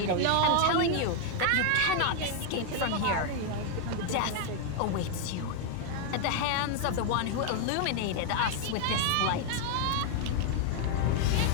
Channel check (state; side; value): different; both; correlation 0.00